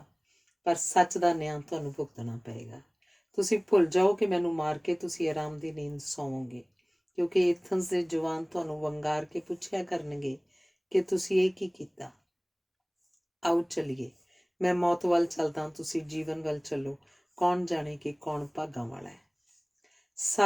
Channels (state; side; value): identical; both; correlation 1.00